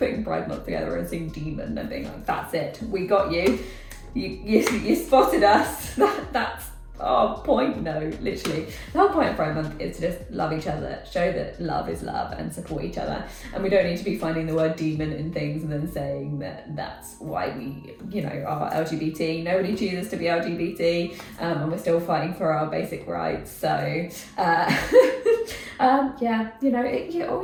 Pride Month together and seeing Demon and being like, that's it, we got you. You spotted us. That's our point. No, literally. The whole point of Pride Month is to just love each other, show that love is love and support each other. And we don't need to be finding the word demon in things and then saying that that's why we, are LGBT. Nobody chooses to be LGBT, and we're still fighting for our basic rights. So, all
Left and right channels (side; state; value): both; identical; correlation 1.00